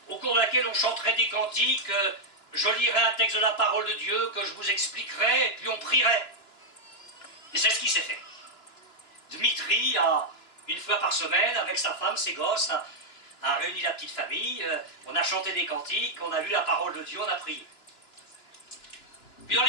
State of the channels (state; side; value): late; right; 2.9 ms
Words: au cours de laquelle on chanterait des cantiques, je lirais un texte de la parole de Dieu que je vous expliquerai, et puis on prierait. Et c'est ce qui s'est fait. Dmitri a, une fois par semaine, avec sa femme, ses gosses, a réuni la petite famille, on a chanté des cantiques, on a lu la parole de Dieu, on a prié. Puis dans